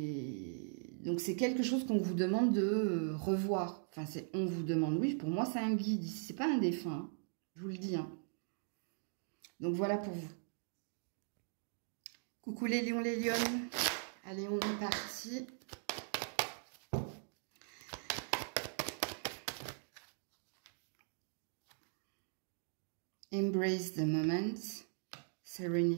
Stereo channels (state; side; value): silent; left; digital silence